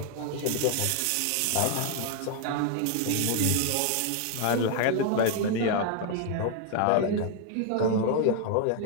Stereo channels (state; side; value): different; both; correlation 0.00